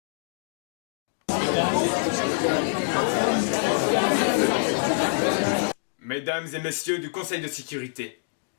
Mesdames et messieurs du Conseil de sécurité,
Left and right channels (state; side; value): silent; right; digital silence